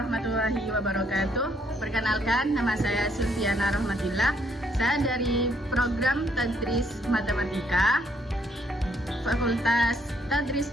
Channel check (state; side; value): normal; both; correlation 0.70